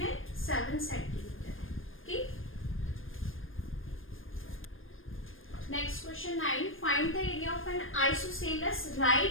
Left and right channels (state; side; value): late; right; 0.59 ms